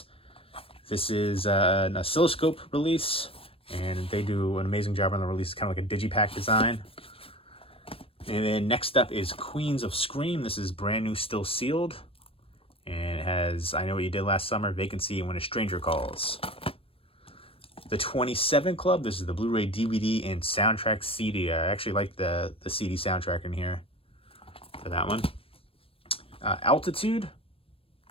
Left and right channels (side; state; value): right; late; 0.27 ms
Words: this is an oscilloscope release, and they do an amazing job on the release. It's kind of like a digipack design. And then next up is Queens of Scream. This is brand new, still sealed. And it has I Know What You Did Last Summer, Vacancy, and When a Stranger Calls. The 27 Club. This is the Blu-ray, DVD, and soundtrack CD. I actually like the CD soundtrack in here. for that one. Altitude,